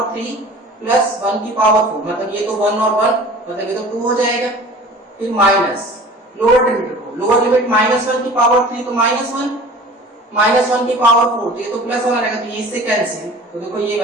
3 प्लस 1 की पावर 4, मतलब ये तो 1 और 1 मतलब ये तो 2 हो जाएगा, फिर माइनस लोअर लिमिट रखो, लोअर लिमिट -1 की पावर 3 तो -1 की पावर 4 तो ये तो +1 आ जाएगा, तो ये इससे कैंसिल, तो देखो ये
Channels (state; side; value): normal; both; correlation 0.43